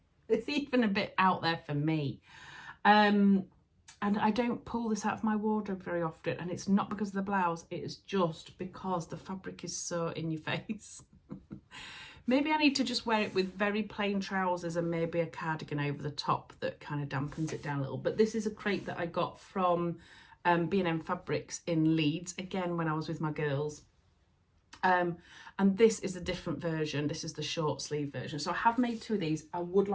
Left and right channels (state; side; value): identical; both; correlation 1.00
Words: It's even a bit out there for me. And I don't pull this out of my wardrobe very often, and it's not because of the blouse, it is just because the fabric is so in your face. Maybe I need to just wear it with very plain trousers and maybe a cardigan over the top that kind of dampens it down a little. But this is a crepe that I got from B&M Fabrics in Leeds, again when I was with my girls. And this is a different version. This is the short sleeve version. So I have made 2 of these. I would